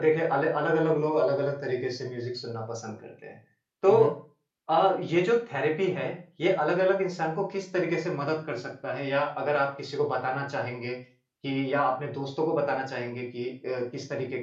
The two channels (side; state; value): both; identical; correlation 1.00